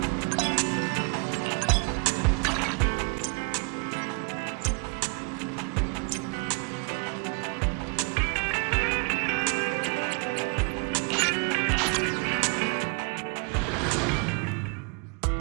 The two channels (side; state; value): left; quieter; 33.8 dB